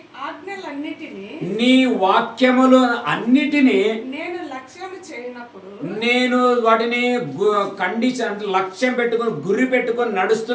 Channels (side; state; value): both; identical; correlation 1.00